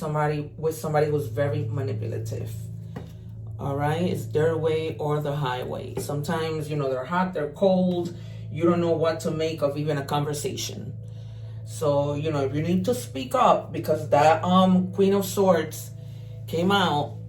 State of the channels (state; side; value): identical; both; correlation 1.00